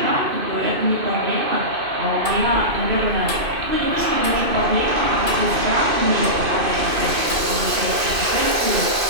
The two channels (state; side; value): late; left; 2.6 ms